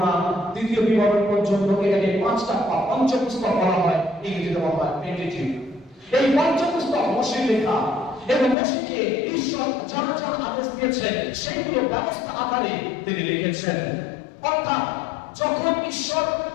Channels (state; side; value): drops out; right; at 8.6 s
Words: দ্বিতীয় বিবরণ পর্যন্ত এটাকে 5টা পঞ্চপুস্তক বলা হয়, ইংরেজিতে বলা হয় পেন্টেটিউক। এই পঞ্চপুস্তক মোশির লেখা, এবং মোশিকে ঈশ্বর যারা যারা আদেশ দিয়েছেন সেগুলো ব্যবস্থা আকারে তিনি লিখেছেন। অর্থাৎ যখন ঈশ্বর